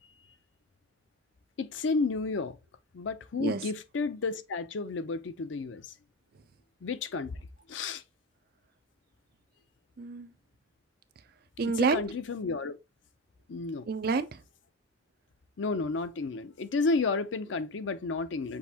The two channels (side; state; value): both; normal; correlation 0.20